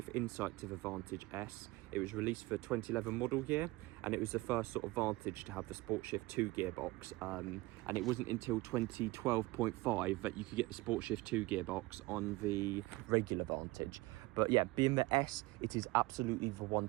of insight to the Vantage S. It was released for 2011 model year, and it was the first sort of Vantage to have the SportShift II gearbox. And it wasn't until 2012.5 that you could get the SportShift II gearbox on the regular Vantage. But yeah, being the S, it is absolutely the one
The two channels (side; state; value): left; quieter; 20.8 dB